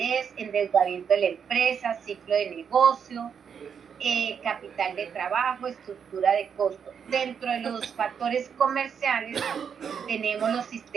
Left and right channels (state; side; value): quieter; left; 7.2 dB